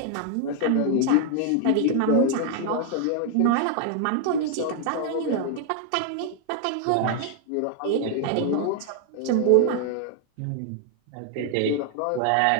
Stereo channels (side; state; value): both; different; correlation 0.00